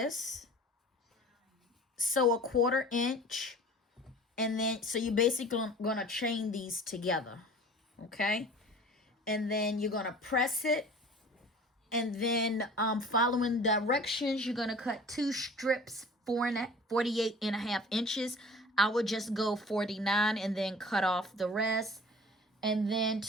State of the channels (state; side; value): normal; both; correlation 0.44